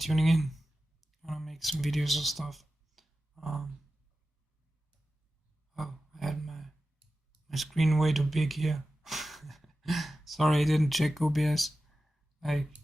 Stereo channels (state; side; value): normal; both; correlation 0.93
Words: in. I'm gonna make some videos and stuff. Oh, I had my screen way too big here. Sorry, I didn't check OBS. I